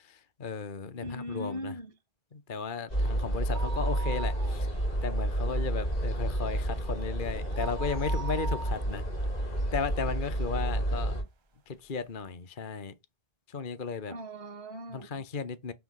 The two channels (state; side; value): late; right; 2.3 ms